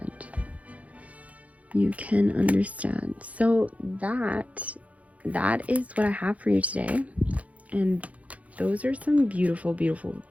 You can understand. So that is what I have for you today, and those are some beautiful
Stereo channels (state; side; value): late; left; 0.068 ms